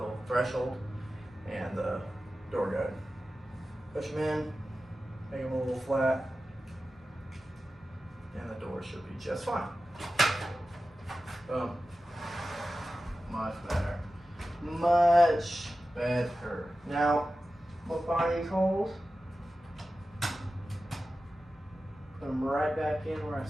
little threshold and the door guide. Push them in, make them a little flat, and the door should be just fine. Boom. Much better. Much better. Now, we'll find these holes. Put them right back in where I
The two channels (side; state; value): both; normal; correlation 0.94